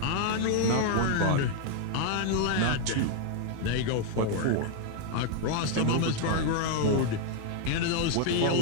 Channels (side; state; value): both; different; correlation 0.00